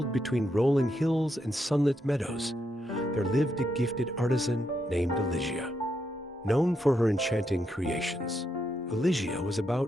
between rolling hills and sunlit meadows, there lived a gifted artisan named Elysia. Known for her enchanting creations, Elysia was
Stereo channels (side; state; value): both; normal; correlation 0.80